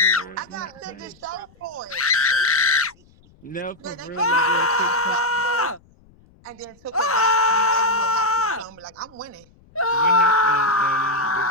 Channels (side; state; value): left; noise; rumble, 29 dB below the sound